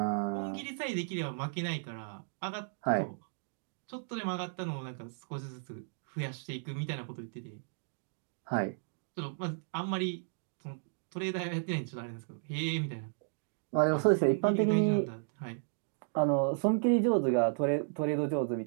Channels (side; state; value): left; silent; digital silence